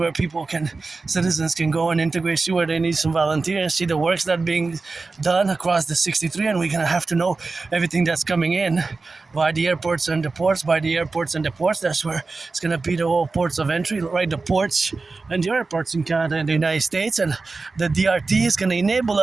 citizens can go and integrate, see where they need some volunteers, see the works that are being done across the 63, and we're gonna have to know everything that's coming in by the airports and the ports, That's where it's gonna be the whole ports of entry, right? The ports and the airports in Canada and the United States. And the DRT is gonna enable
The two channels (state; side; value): quieter; left; 3.9 dB